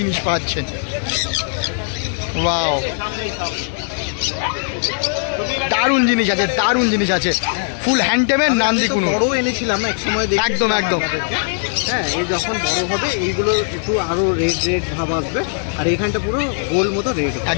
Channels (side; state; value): right; silent; digital silence